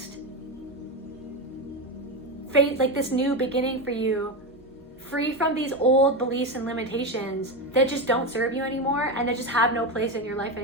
phase, like this new beginning for you, free from these old beliefs and limitations that just don't serve you anymore and that just have no place in your life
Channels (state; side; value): normal; both; correlation 0.15